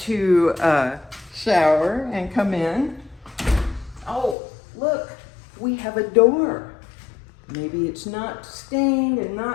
shower and come in. Oh, look, we have a door. Maybe it's not stained and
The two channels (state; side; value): drops out; right; at 4.4 s